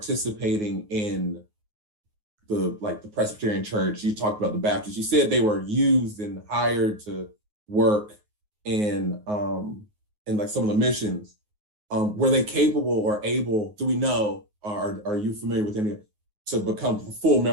in the Presbyterian Church? You talked about the Baptists. You said they were used and hired to work in like some of the missions. Were they capable or able, do we know, are you familiar with any, to become full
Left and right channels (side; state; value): left; late; 9.5 ms